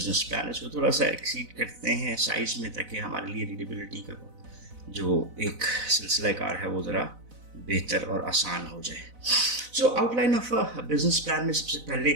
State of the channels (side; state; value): left; late; 4.0 ms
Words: plan. इसको थोड़ा सा एक्सीड करते हैं साइज में ताकि हमारे लिए रीडेबिलिटी का जो एक सिलसिला कार है वो ज़रा बेहतर और आसान हो जाए। सो outline of a business plan में सबसे